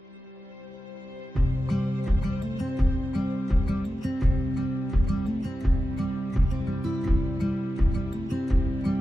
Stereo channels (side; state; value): both; normal; correlation 0.92